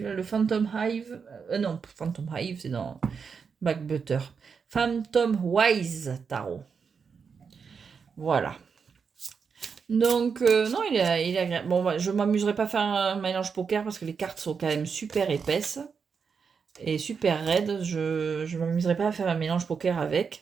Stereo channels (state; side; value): quieter; left; 5.9 dB